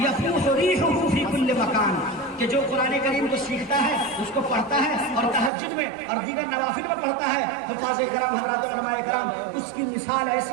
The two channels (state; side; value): drops out; left; at 5.5 s